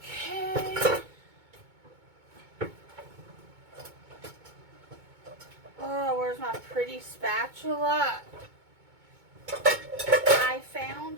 Okay. Oh, where's my pretty spatula? I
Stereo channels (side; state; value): left; late; 2.2 ms